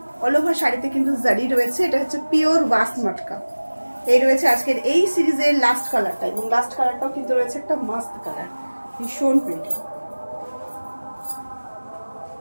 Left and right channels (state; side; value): inverted; both; correlation -1.00